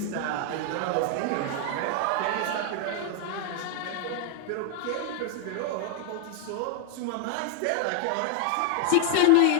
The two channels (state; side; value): different; both; correlation 0.00